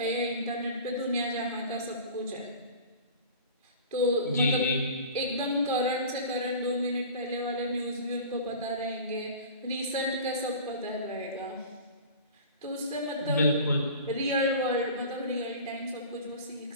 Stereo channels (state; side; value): inverted; both; correlation -0.39